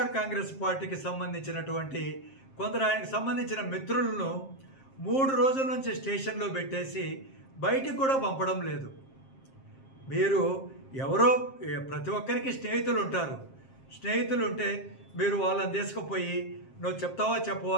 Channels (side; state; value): right; late; 7.5 ms